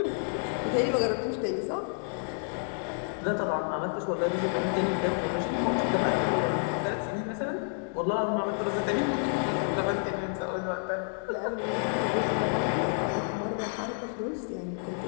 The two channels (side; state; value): right; silent; 58 dB below the other